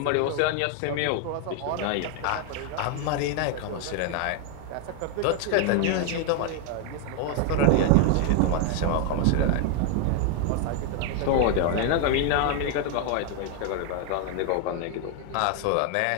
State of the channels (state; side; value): different; both; correlation 0.01